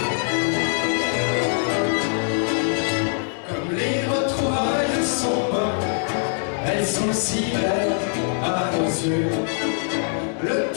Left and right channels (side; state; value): right; silent; digital silence